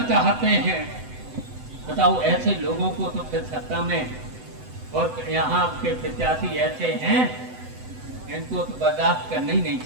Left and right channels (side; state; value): left; late; 7.9 ms